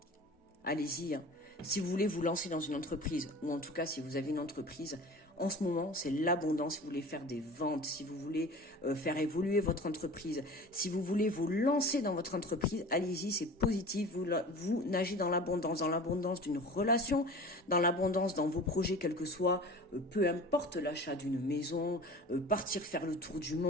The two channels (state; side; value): normal; both; correlation 0.39